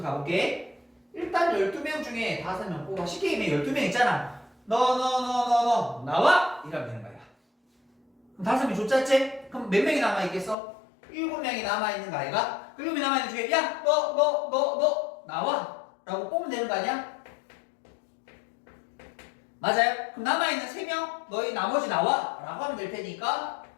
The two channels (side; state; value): right; drops out; at 10.6 s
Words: 가볼게. 일단 12명 중에 5명 뽑아. 쉽게 얘기하면 12명 있잖아. 너 나와! 이러면 되는 거야. 그럼 5명 줬잖지? 그럼 몇 명이 남아있겠어? 7명이 남아있는 거 아이가? 그 7명이 남아있는 중에 야! 너 나와! 라고 뽑으면 되는 거 아니야? 맞아요? 그럼 남아있는 3명 너희 나머지 나와! 라고 하면 될 테니까